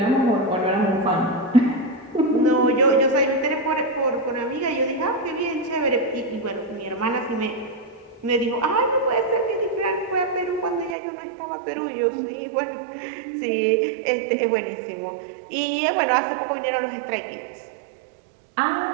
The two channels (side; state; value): left; drops out; at 11.0 s